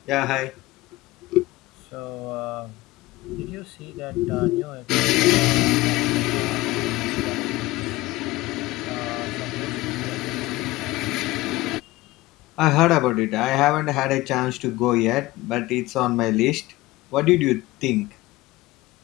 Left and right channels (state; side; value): quieter; right; 19.0 dB